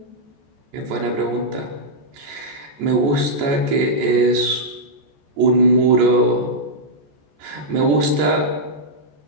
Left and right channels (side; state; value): left; late; 14 ms